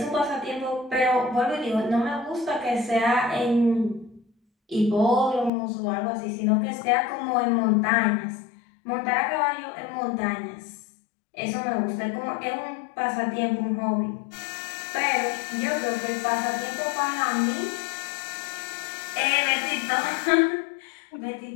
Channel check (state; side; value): drops out; right; at 5.5 s